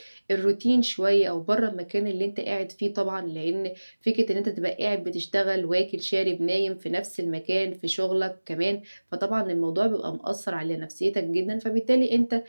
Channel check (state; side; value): inverted; both; correlation -1.00